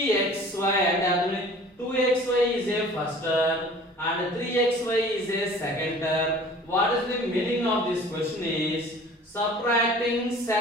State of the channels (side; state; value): both; normal; correlation 0.47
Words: and 2xy is a first term and 3xy is a second term. What is the meaning of this question is subtracting